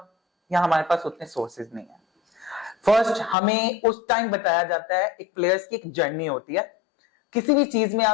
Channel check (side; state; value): right; drops out; at 3.4 s